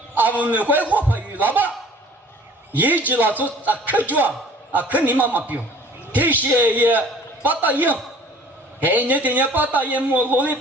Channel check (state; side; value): normal; both; correlation 0.49